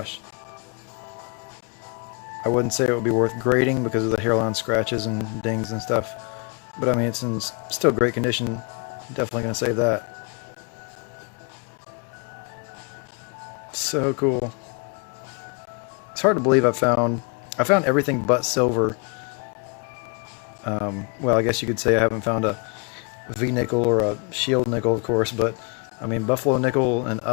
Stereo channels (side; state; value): right; quieter; 34.4 dB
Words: I wouldn't say it would be worth grading because of the hairline scratches and dings and stuff. But I mean, it's in still great condition. Definitely gonna say that. So cool. It's hard to believe I found everything but silver. Well, I guess you could say I haven't found a V nickel or a shield nickel, of course, but I mean buffalo nickel and